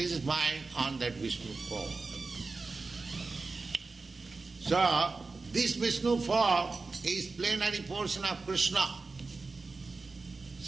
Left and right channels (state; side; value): quieter; left; 3.9 dB